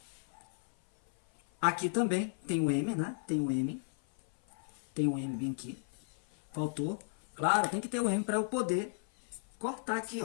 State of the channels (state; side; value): silent; right; 55 dB below the other